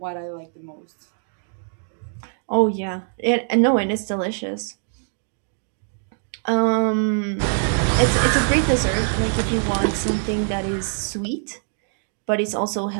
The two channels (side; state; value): left; silent; digital silence